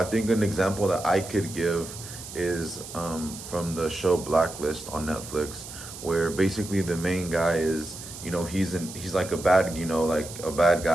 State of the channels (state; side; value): noise; right; hiss, 12 dB below the sound